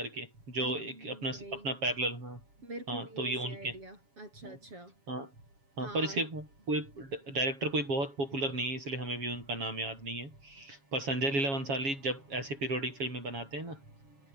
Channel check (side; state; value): left; late; 7.2 ms